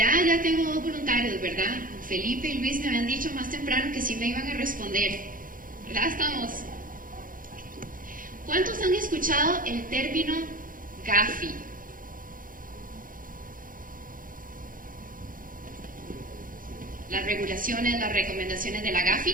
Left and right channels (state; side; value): late; left; 0.40 ms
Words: tengo 2 voluntarios, ¿verdad? Felipe y Luis me habían dicho más temprano que sí me iban a responder. ¿Verdad? Estamos. ¿Cuántos han escuchado el término GAFI? Las regulaciones, las recomendaciones de la